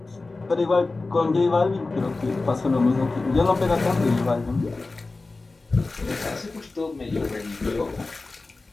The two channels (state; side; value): quieter; right; 3.5 dB